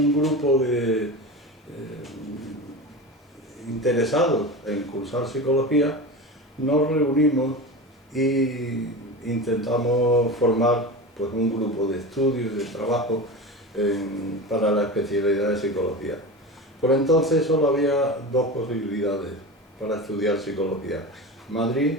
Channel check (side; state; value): both; normal; correlation 0.28